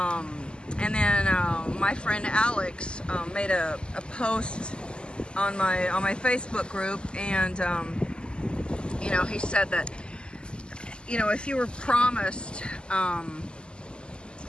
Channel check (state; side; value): late; right; 0.049 ms